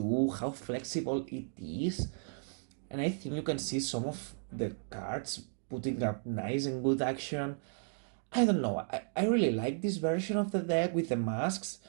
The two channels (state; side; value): silent; left; digital silence